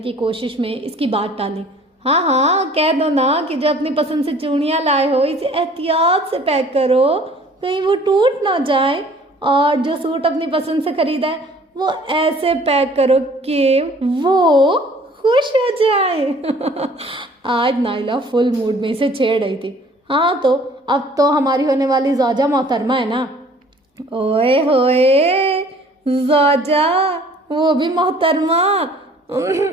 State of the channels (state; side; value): normal; both; correlation 0.53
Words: کوشش میں اس کی بات ٹالی۔ ہاں کہہ دو نا کہ جو اپنی پسند سے چوڑیاں لائے ہو اسے احتیاط سے پیک کرو، کہیں وہ ٹوٹ نہ جائے، اور جو سوٹ اپنی پسند سے خریدا ہے وہ ایسے پیک کرو کہ وہ خوش ہو جائے۔ آج نائلہ فل موڈ میں اسے چھیڑ رہی تھی۔ ہاں تو اب تو ہماری ہونے والی زوجہ محترمہ ہے نا۔ اوئے ہوئے زوجہ، وہ بھی محترمہ۔